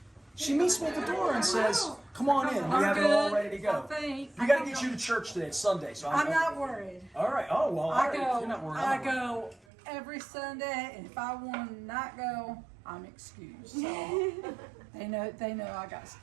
She meets me at the door and says, "Come on in. We have it all ready to go." We got to get you to church today. It's Sunday, so I'm not worried. All right. Oh well. You're not worried. I go every Sunday, and if I want to not go, I'm excused. So they know I got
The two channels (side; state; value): left; drops out; at 9.6 s